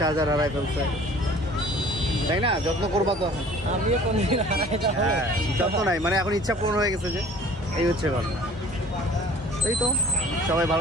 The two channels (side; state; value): both; normal; correlation 0.49